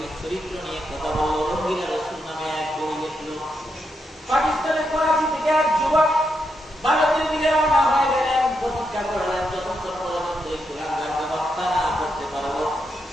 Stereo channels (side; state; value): both; normal; correlation 0.82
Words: চরিত্র নিয়ে কথা বলল। রঙ্গিলা রাসূল নামে এক বই লিখলো। পাকিস্তানের করাচি থেকে এক যুবক ভারতের দিকে রওনা হয়ে গেলেন। প্রতিজ্ঞা করলেন যতক্ষণ পর্যন্ত এই কুলাঙ্গারকে হত্যা না করতে পারবো,